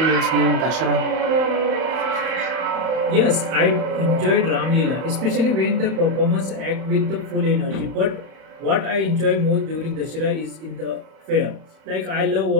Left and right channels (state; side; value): late; left; 31 ms